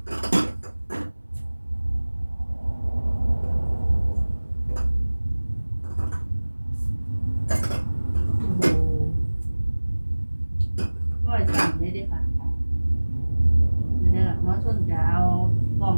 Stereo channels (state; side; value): inverted; both; correlation -1.00